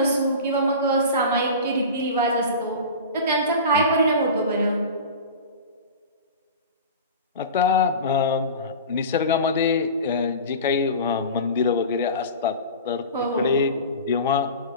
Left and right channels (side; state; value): both; inverted; correlation -0.33